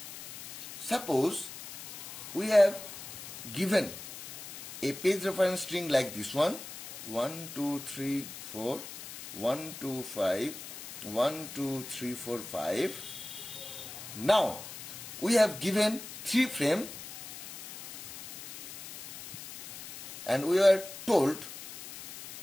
Suppose we have given a page reference string like this one, 1, 2, 3, 4, 1, 2, 5, 1, 2, 3, 4, 5. Now we have given 3 frame and we are told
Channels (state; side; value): noise; left; hiss, 11 dB below the sound